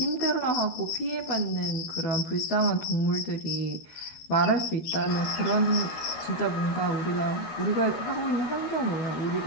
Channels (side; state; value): right; late; 13 ms